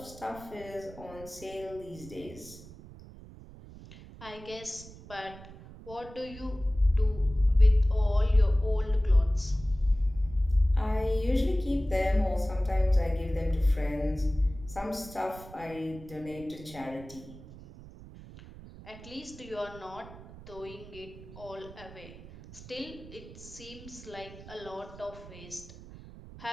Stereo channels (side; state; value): right; noise; rumble, 17 dB below the sound